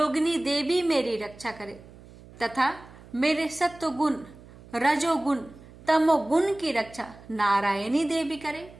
देवी मेरी रक्षा करे तथा मेरे सत्वगुण रजोगुण तमोगुण की रक्षा नारायणी देवी करे।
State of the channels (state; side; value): noise; right; hum, 21 dB below the sound